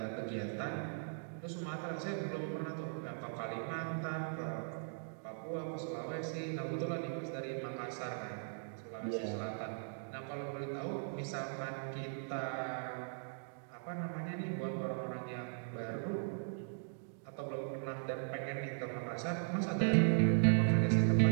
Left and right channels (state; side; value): silent; left; digital silence